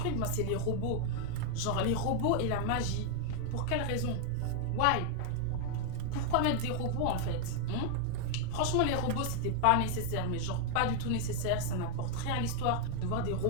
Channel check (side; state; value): both; different; correlation 0.00